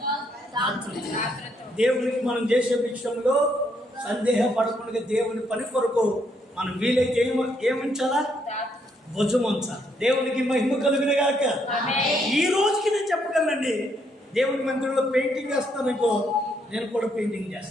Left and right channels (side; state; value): both; normal; correlation 0.73